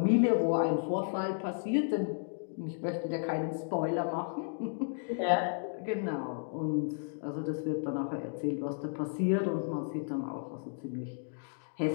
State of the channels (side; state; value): right; silent; digital silence